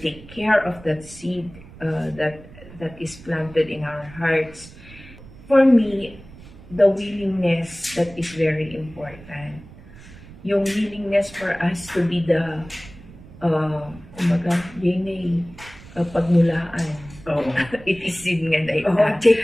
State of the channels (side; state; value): right; noise; rumble, 19 dB below the sound